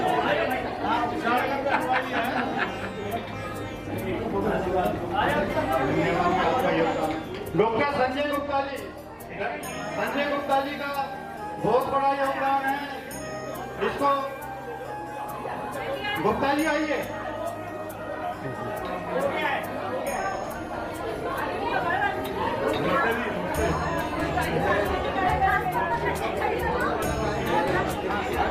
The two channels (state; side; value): identical; both; correlation 1.00